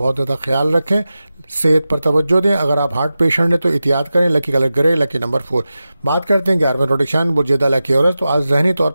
زیادہ خیال رکھیں. صحت پر توجہ دیں. اگر آپ ہارٹ پیشنٹ ہیں تو احتیاط کریں. لکی کلر گرے، لکی نمبر 4. بات کرتے ہیں 11ویں روٹیشن بجیدہ لکی عورت. تو آج ذہنی طور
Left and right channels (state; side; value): inverted; both; correlation -0.93